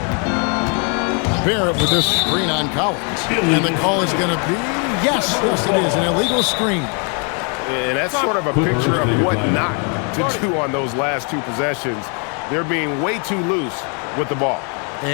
Barrett with this screen on Collins. And the call is going to be, yes, it is, an illegal screen. And that's sort of a picture of what not to do on those last 2 possessions. They're being way too loose with the ball.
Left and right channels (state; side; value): quieter; right; 37.6 dB